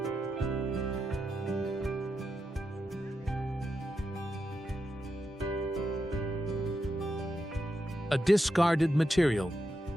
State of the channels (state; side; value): normal; both; correlation 0.86